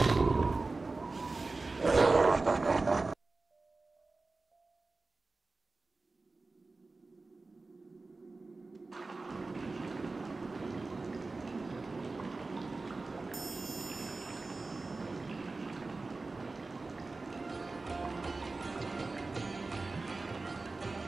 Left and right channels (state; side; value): quieter; left; 3.6 dB